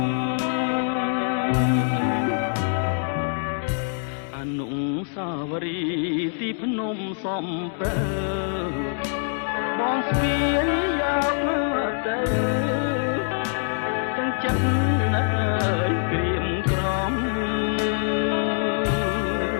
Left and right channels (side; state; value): right; silent; 62 dB below the other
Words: អនុសាវរីយ៍ទីភ្នំសំពើបងស្ពាយយកមកទៅទាំងចិត្តណាស់ក្រៀមក្រំ